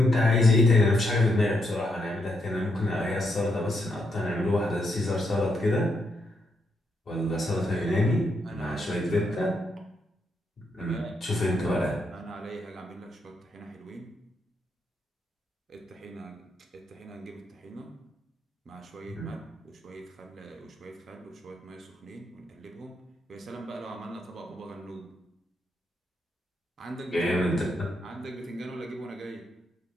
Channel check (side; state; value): both; normal; correlation 0.79